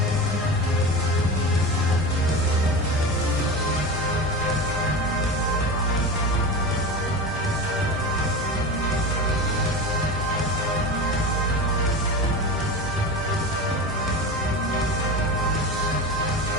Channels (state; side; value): normal; both; correlation 0.26